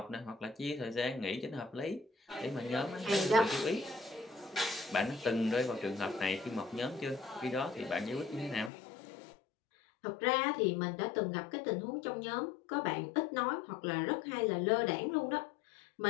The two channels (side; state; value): right; drops out; at 8.7 s